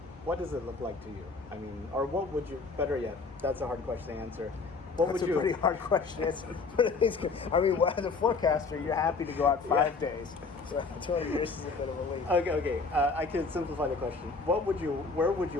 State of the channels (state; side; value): quieter; right; 4.3 dB